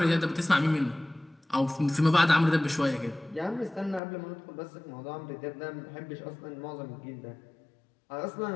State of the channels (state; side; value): drops out; right; at 4.0 s